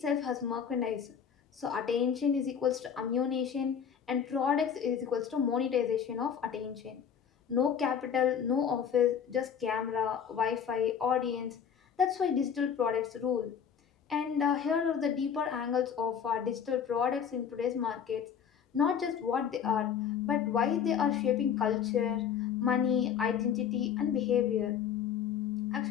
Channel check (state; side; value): quieter; right; 7.8 dB